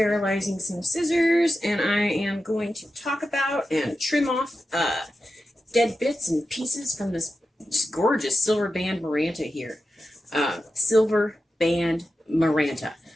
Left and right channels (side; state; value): both; normal; correlation 0.91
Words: some scissors, and I am going to talk about and trim off dead bits and pieces from this just gorgeous silver band Maranta here. Silver band Maranta.